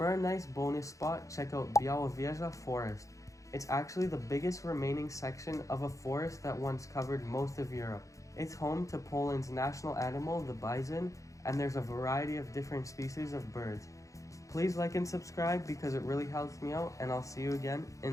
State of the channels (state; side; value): late; right; 0.16 ms